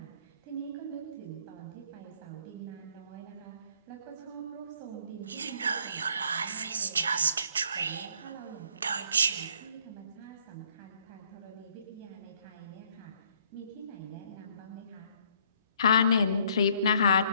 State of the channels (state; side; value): inverted; both; correlation -0.64